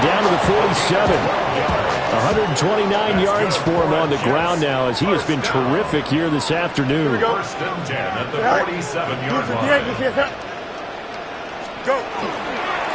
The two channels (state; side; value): identical; both; correlation 1.00